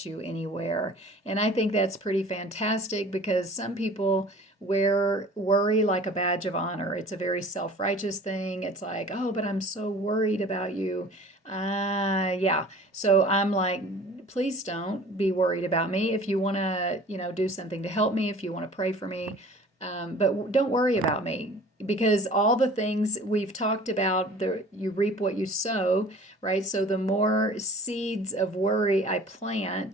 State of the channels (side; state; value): both; normal; correlation 0.46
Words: you anywhere. And I think that's pretty fantastic because some people wear worry like a badge of honor. It's a very self-righteous thing. It's like, oh, but I'm so worried about you. Yeah. So I'm like, please don't be worried about me. If you want to, do something to help me, if you want to pray for me, but don't worry about me because all the things we've talked about, you reap what you sow, right? So the more seeds of worry I